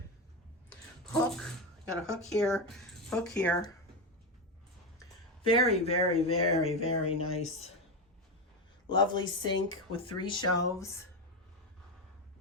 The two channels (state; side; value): normal; both; correlation 0.13